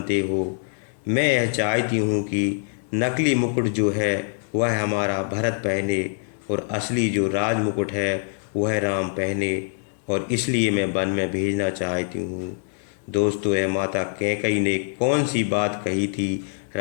हो, मैं यह चाहती हूँ कि नकली मुकुट जो है वह हमारा भरत पहने और असली जो राज मुकुट है वह राम पहने, और इसलिए मैं वन में भेजना चाहती हूँ। दोस्तों, यह माता कैकई ने कौन सी बात कही थी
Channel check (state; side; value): silent; right; 63 dB below the other